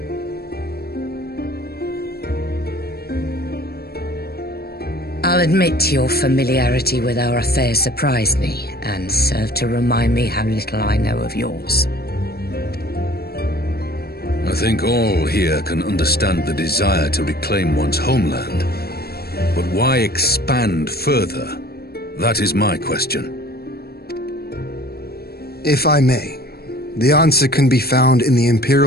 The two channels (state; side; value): late; right; 0.46 ms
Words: I'll admit your familiarity with our affair surprised me, and served to remind me how little I know of yours. I think all here can understand the desire to reclaim one's homeland. But why expand further? That is my question. If I may, the answer can be found in the